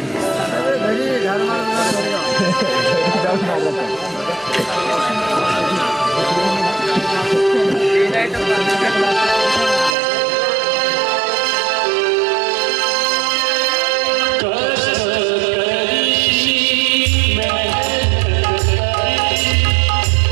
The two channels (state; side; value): drops out; left; at 10.0 s